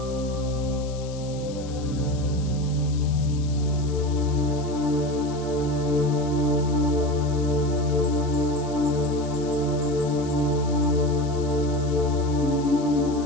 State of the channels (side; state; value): left; noise; hiss, 18 dB below the sound